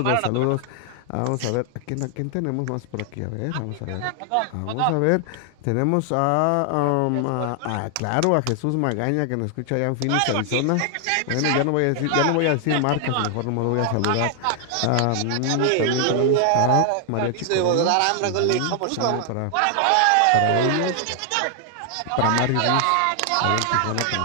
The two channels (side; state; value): both; different; correlation 0.00